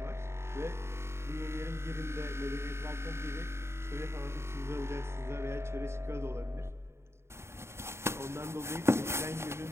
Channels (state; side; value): late; left; 0.13 ms